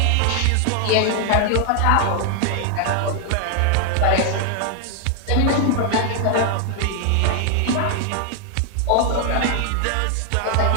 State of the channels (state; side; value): different; both; correlation 0.00